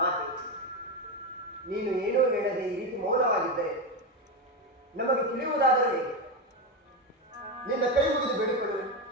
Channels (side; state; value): both; normal; correlation 0.13